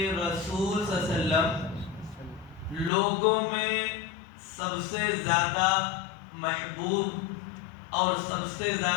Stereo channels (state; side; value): drops out; right; at 2.9 s